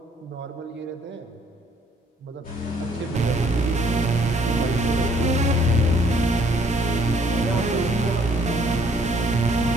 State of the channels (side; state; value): both; normal; correlation 0.63